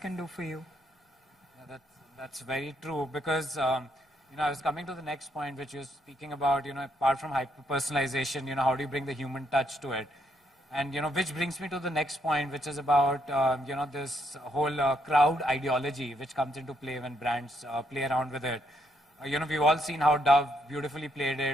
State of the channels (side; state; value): both; normal; correlation 0.74